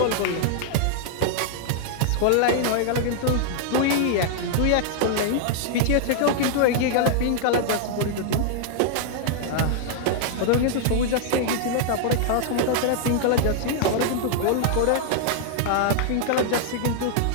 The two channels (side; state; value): both; different; correlation 0.00